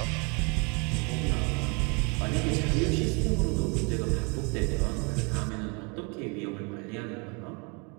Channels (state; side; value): quieter; left; 32.1 dB